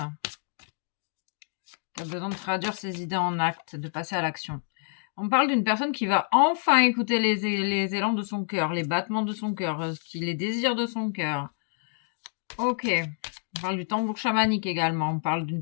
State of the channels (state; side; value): silent; right; 60 dB below the other